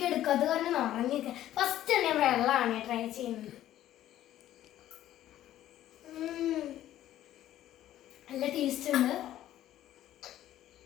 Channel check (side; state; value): right; quieter; 12.9 dB